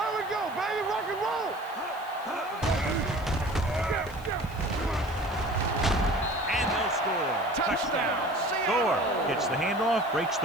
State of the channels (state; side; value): noise; right; hiss, 24 dB below the sound